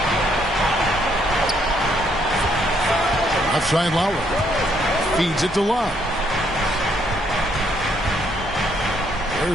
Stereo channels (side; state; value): both; normal; correlation 0.70